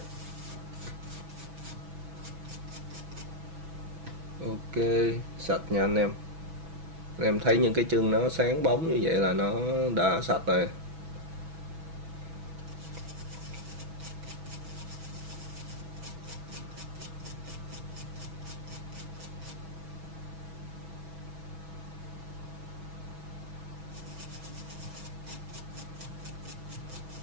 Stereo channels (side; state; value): left; late; 6.1 ms